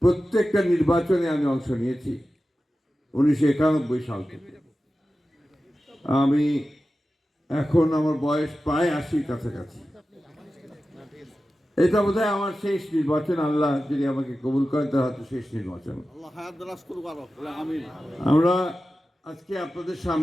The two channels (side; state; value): both; normal; correlation 0.94